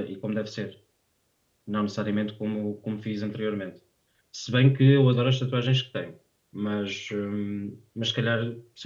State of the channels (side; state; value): both; identical; correlation 1.00